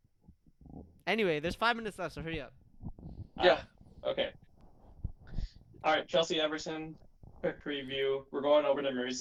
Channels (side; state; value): both; identical; correlation 1.00